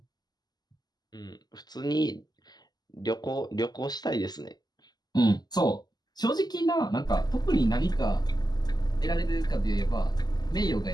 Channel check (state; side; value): late; right; 0.20 ms